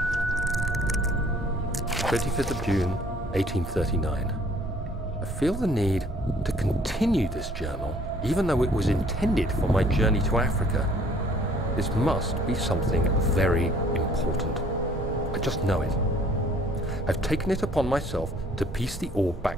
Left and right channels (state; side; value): normal; both; correlation 0.58